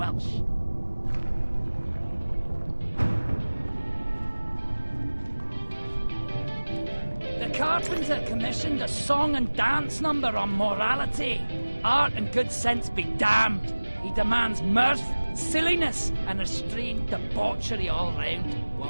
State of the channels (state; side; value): inverted; both; correlation -1.00